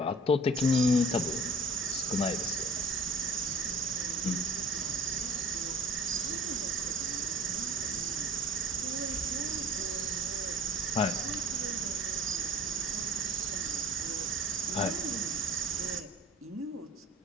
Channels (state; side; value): normal; both; correlation 0.46